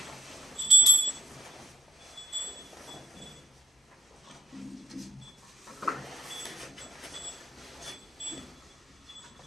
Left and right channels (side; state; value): both; normal; correlation 0.69